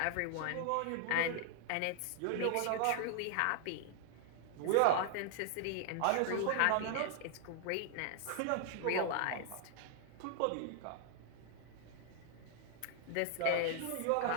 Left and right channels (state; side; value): different; both; correlation -0.01